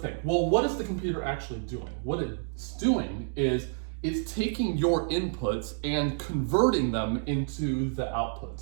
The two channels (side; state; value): left; silent; digital silence